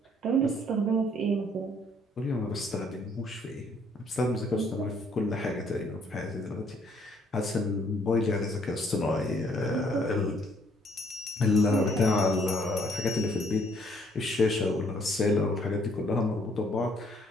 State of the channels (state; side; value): normal; both; correlation 0.65